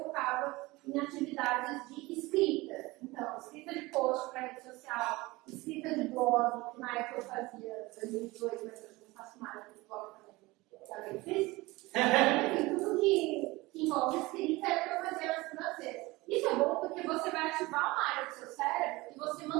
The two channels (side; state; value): left; quieter; 21.5 dB